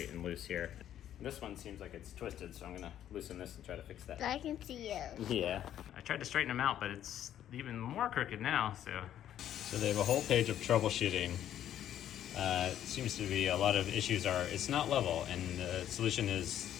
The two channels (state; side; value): quieter; right; 11.1 dB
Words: and loose here. This one seems like it's twisted, so I'm gonna loosen this and try to fix that. I can see you. Yeah. I tried to straighten them out, but it's even more crooked now, so. So they have a whole page of troubleshooting. Seems to be a lot of issues are, it's not level, and the solution